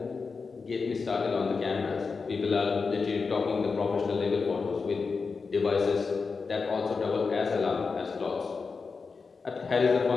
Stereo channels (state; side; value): quieter; right; 4.8 dB